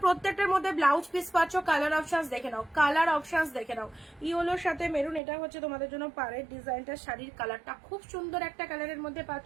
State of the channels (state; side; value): drops out; left; at 5.2 s